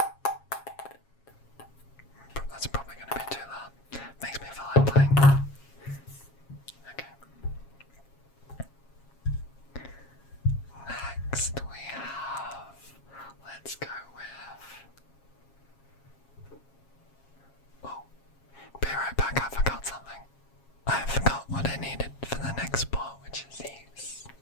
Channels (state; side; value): late; right; 7.3 ms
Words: That's probably going to be too loud. Makes me feel like playing. Okay. Next we have, let's go with, oh, be right back, I forgot something. I forgot what I needed for the next sport, which is these.